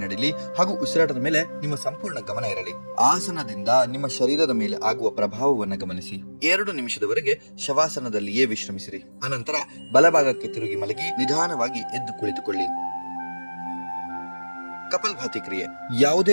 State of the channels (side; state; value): both; inverted; correlation -1.00